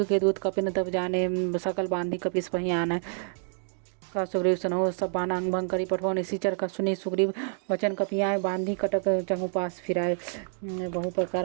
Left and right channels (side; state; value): left; silent; digital silence